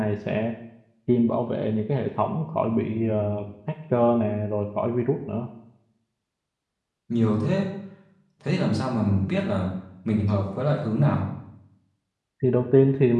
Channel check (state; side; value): identical; both; correlation 1.00